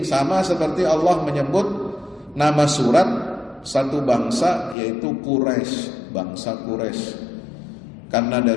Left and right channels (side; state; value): right; drops out; at 4.8 s